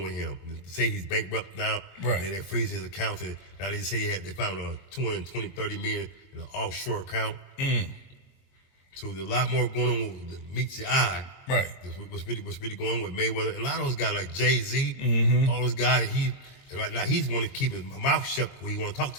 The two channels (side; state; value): right; late; 22 ms